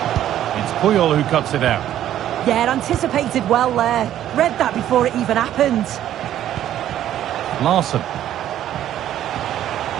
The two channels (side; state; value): left; quieter; 11.8 dB